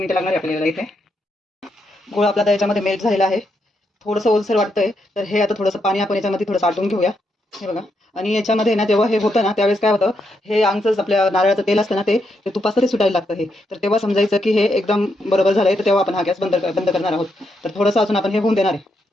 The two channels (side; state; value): both; normal; correlation 0.80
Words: लागणार आहे आपल्याला इथे. गुळ आपला त्याच्यामध्ये मेल्ट झालेला आहे. थोडंसं ओलसर वाटतंय, तर हे आता थोडंसं पाणी आपण याच्यामध्ये थोडंसं आटून घेऊया. हे बघा आणि याच्यामध्ये ना जेव्हा हे होतं ना त्यावेळेस काय होतं, हे आमचंच आपल्या नारळाचं तेल असतं ना ते तुपाचं ते सुटायला लागतं. हे तर तेव्हा समजायचं की हे एकदम बरोबर झालंय. तर तेव्हा आपण हा गॅस बंद करणार आहोत. तर थोडंसं अजून आपण हे होऊन देणार